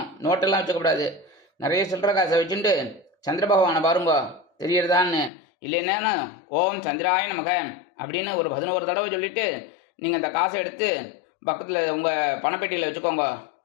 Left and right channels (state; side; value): drops out; right; at 5.3 s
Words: நோட்டெல்லாம் வச்சுக்கக்கூடாது. நிறைய சில்லற காசை வச்சுட்டு சந்திர பகவானை பாருங்க, தெரியறதான்னு. இல்லைன்னா ஓம் சந்திராய நமக அப்படின்னு ஒரு 11 தடவை சொல்லிட்டு நீங்கள் அந்த காசை எடுத்து பக்கத்தில் உங்கள் பணப்பெட்டியில் வச்சுக்கோங்க.